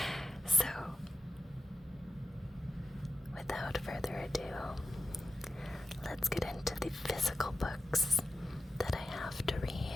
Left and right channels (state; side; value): normal; both; correlation 0.91